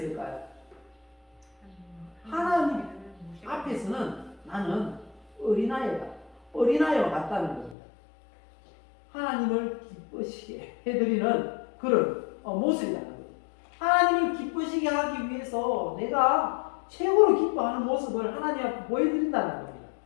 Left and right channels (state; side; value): drops out; right; at 7.8 s